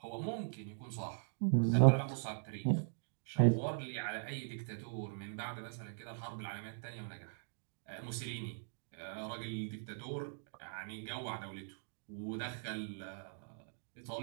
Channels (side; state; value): left; silent; digital silence